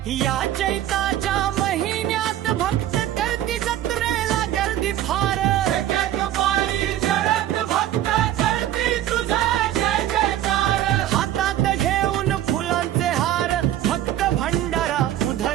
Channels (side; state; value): left; quieter; 12.4 dB